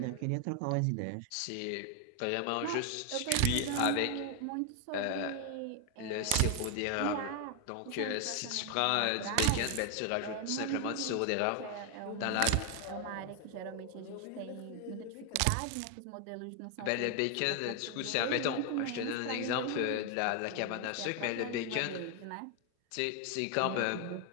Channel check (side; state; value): both; different; correlation 0.00